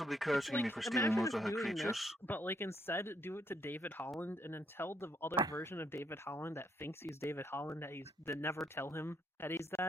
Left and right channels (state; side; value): normal; both; correlation 0.73